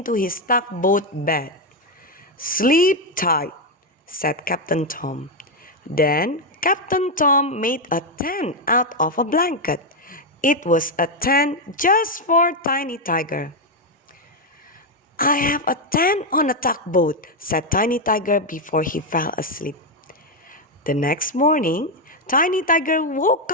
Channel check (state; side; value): normal; both; correlation 0.03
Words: his tugboat bed. "Sleep tight," said Captain Tom. Then Captain Tom made a tent out of a blanket. It was a tent just for Tiny Tiger. "I have a tent on a tugboat," said Tiny Tiger before he fell asleep. The next morning, Tiny Tiger woke